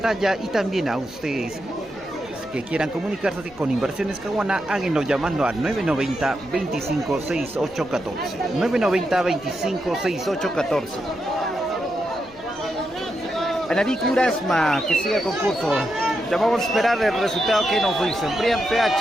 y también a ustedes que quieran comunicarse con Inversiones Caguana, háganlo llamando al 990 25 68 14. 990 25 68 14. Anarí Curasma, que siga el concurso. Ya vamos a esperar el resultado que nos dicen. Brian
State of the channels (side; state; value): left; noise; rumble, 25 dB below the sound